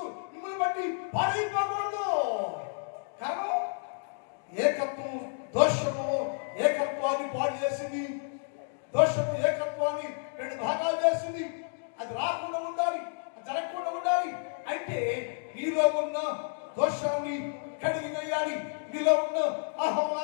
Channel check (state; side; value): silent; right; digital silence